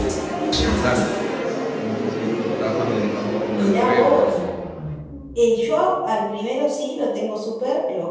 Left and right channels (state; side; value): identical; both; correlation 1.00